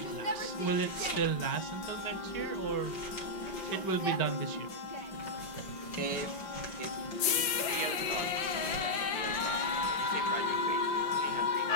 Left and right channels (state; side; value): late; right; 5.1 ms